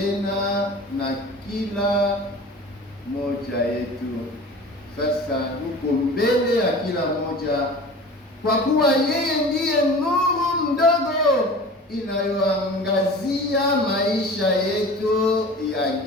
na kila moja yetu. Sasa yuko mbele ya kila moja, kwa kuwa yeye ndiye nuru ndogo inayoangazia maisha yetu ya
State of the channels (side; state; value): both; normal; correlation 0.38